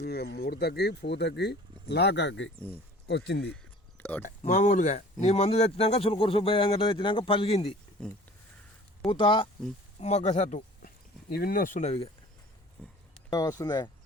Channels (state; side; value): normal; both; correlation 0.46